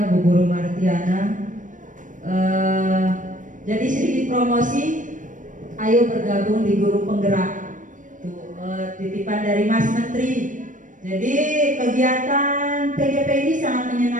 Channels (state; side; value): late; left; 0.37 ms